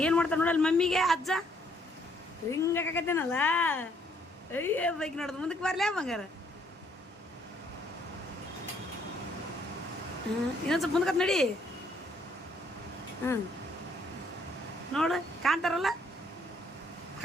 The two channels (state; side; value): normal; both; correlation 0.67